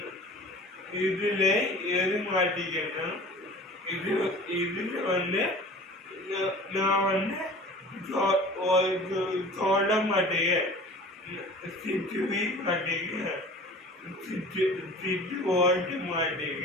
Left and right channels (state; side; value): normal; both; correlation 0.42